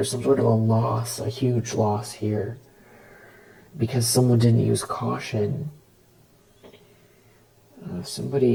some sort of a loss, a huge loss here, because someone didn't use caution.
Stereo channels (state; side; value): identical; both; correlation 1.00